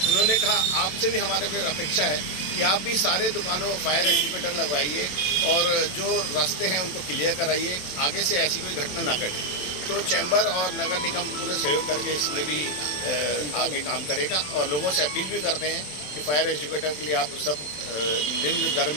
उन्होंने कहा आपसे भी हमारे को अपेक्षा है कि आप भी सारे दुकानों फायर एक्टिवेटर लगवाइए और जो रास्ते हैं उनको क्लियर कराइए, आगे से ऐसी कोई घटना ना घटे। तो चैम्बर और नगर निगम पूरे सहयोग करके इसमें भी आगे काम करेगा और लोगों से अपील भी करते हैं कि फायर एक्टिवेटर के लिए आप सब निम्न दर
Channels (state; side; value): late; right; 27 ms